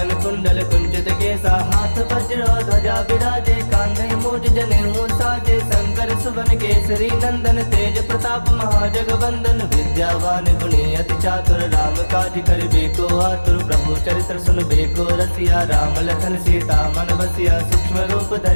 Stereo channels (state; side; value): inverted; both; correlation -1.00